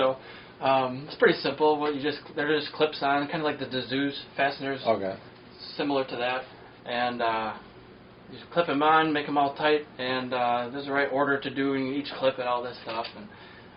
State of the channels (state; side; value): identical; both; correlation 1.00